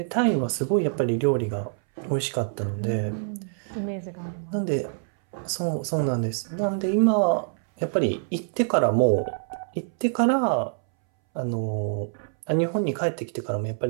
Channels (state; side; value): silent; left; 61 dB below the other